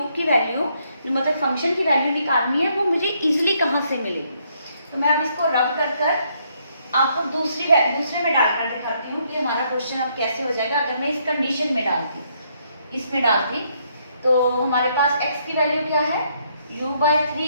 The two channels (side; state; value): both; inverted; correlation -0.72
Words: की वैल्यू, मतलब फंक्शन की वैल्यू निकालनी है, वो मुझे इजीली कहाँ से मिलेगी। तो मैं अब इसको रब कर आपको दूसरे में डालकर दिखाती हूँ कि हमारा क्वेश्चन अब कैसे हो जाएगा। अगर मैं इस कंडीशन में डालती, इसमें डालती, तो हमारे पास x की वैल्यू क्या है? u by